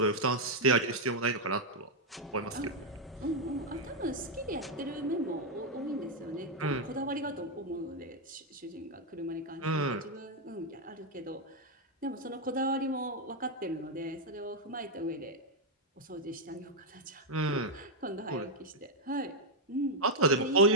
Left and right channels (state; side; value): normal; both; correlation -0.01